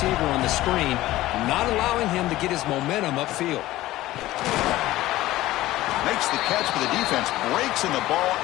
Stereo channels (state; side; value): quieter; right; 16.3 dB